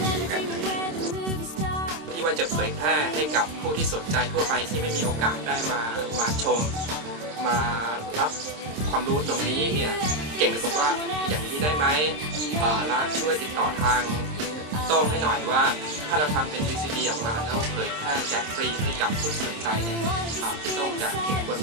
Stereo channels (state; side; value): late; left; 26 ms